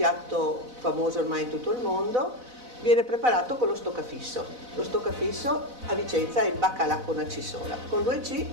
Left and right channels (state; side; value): late; left; 4.0 ms